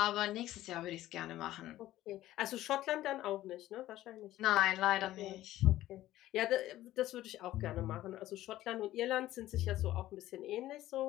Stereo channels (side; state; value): right; quieter; 14.7 dB